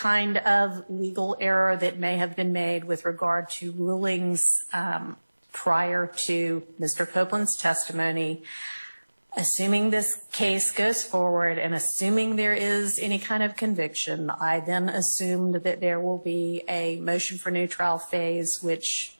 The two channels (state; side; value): inverted; both; correlation -1.00